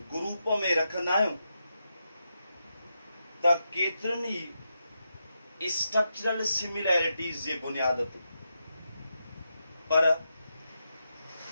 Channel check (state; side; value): inverted; both; correlation -0.85